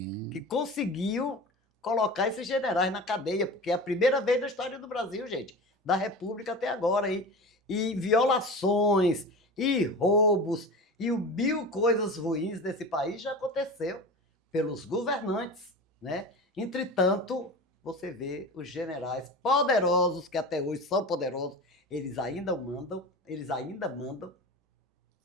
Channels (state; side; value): normal; both; correlation 0.32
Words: que conseguiu colocar esses generais na cadeia, porque é a primeira vez na história do Brasil, gente, da República até agora. E violações, e roubos, e mil coisas ruins desse país já aconteceu pelos governantes, né? Entretanto, você vê os generais poderosos, que até hoje são poderosos, eles ainda mandam,